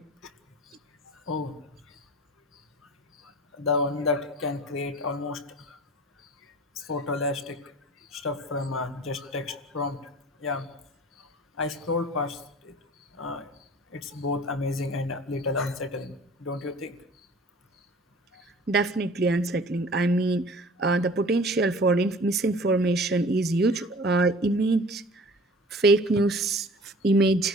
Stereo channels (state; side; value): normal; both; correlation 0.45